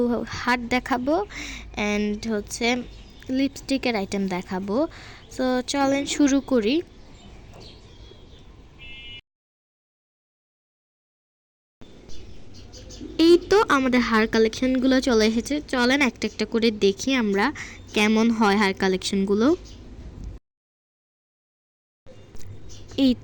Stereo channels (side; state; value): both; identical; correlation 1.00